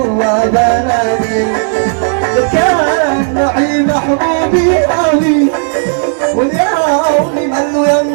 بلاني كان معي محبوبي قوي واليوم من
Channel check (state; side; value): silent; left; digital silence